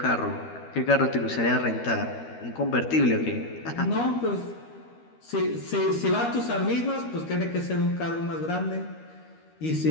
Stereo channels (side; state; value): right; late; 13 ms